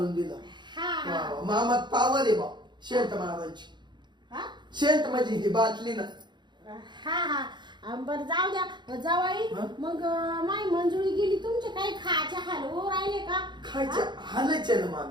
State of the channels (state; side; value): late; left; 0.22 ms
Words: दिला. हा मामात पावर आहे बा शेंट मारायची. शेंट म्हणजे ही बाटली ना. हा हा बरं जाऊ द्या जावाई मग माई मंजुळी गेली तुमचे काही खायचे हाल हो राहिले का? खायच्या हालायचे ना